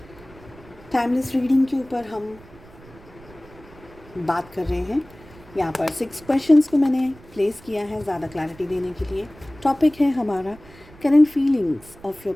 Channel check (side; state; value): right; noise; rumble, 22 dB below the sound